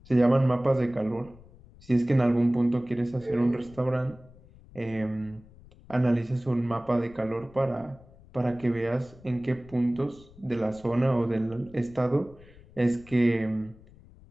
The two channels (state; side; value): noise; left; rumble, 23 dB below the sound